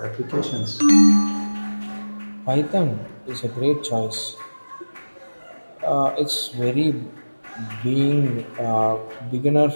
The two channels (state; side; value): inverted; both; correlation -1.00